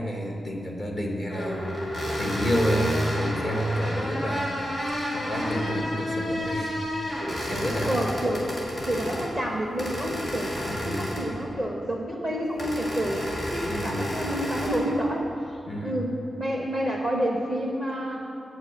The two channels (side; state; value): both; normal; correlation 0.88